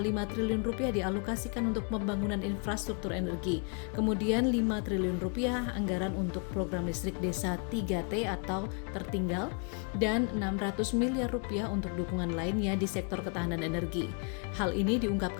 triliun rupiah dialokasikan untuk pembangunan infrastruktur energi. Kemudian 5 triliun rupiah anggaran untuk program listrik desa 3T atau tertinggal, dan 600 miliar rupiah untuk dukungan lainnya di sektor ketahanan energi. Hal ini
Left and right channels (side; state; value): right; quieter; 39.4 dB